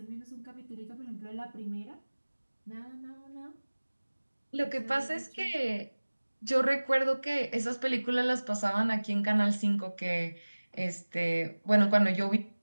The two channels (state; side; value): inverted; both; correlation -1.00